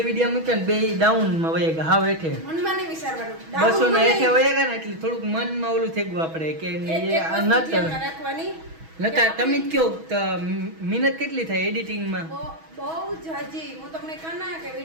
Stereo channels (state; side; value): late; left; 6.2 ms